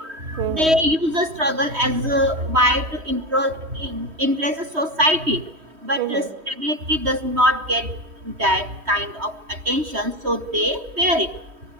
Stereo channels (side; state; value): left; late; 3.1 ms